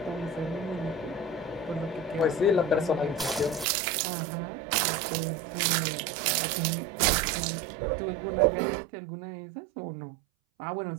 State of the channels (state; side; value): drops out; left; at 3.7 s